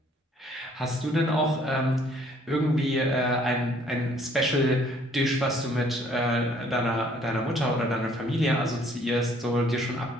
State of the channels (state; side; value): normal; both; correlation 0.61